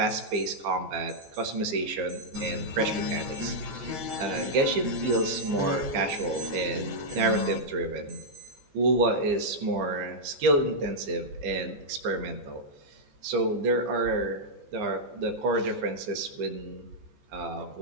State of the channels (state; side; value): late; left; 15 ms